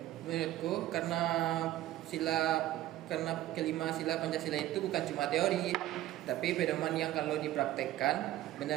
Menurutku karena kelima sila Pancasila itu bukan cuma teori, tapi pedoman yang kalau dipraktekkan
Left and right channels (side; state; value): left; quieter; 14.3 dB